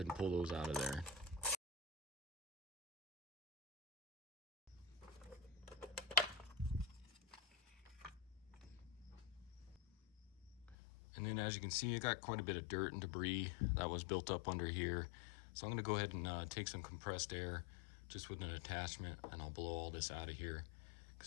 and pull those out of there. And then as you can see, it got quite a bit of dirt and debris that was built up under here. So I'm gonna go ahead and take some compressed air just with an attachment, and I'll blow all this out of here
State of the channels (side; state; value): right; drops out; at 10.8 s